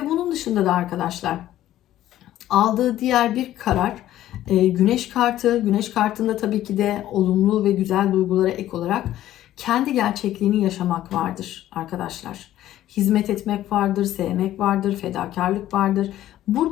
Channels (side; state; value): right; quieter; 13.4 dB